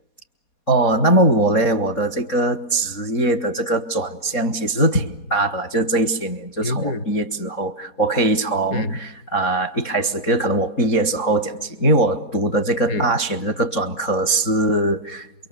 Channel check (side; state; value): right; late; 4.2 ms